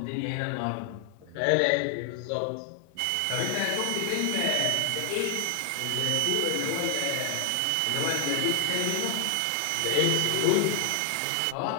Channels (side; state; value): both; different; correlation 0.00